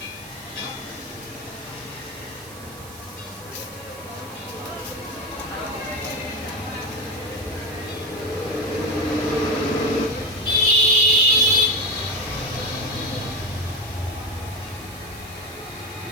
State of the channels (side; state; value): right; noise; hiss, 18 dB below the sound